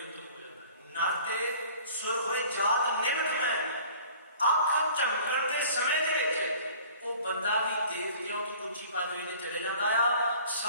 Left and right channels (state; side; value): inverted; both; correlation -0.48